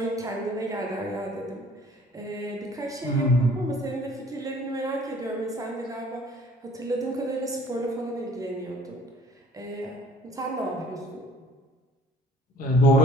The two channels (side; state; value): both; normal; correlation 0.54